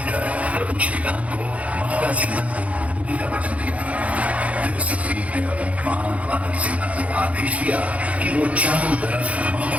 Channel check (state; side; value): late; left; 0.066 ms